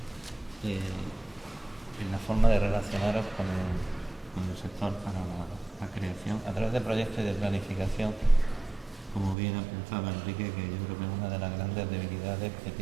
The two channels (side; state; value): left; drops out; at 9.3 s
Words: en la forma de relacionaros con el sector para la creación a través de proyectos y de planificación, como bien apuntaba Enrique, que yo creo que es una de las grandes debilidades que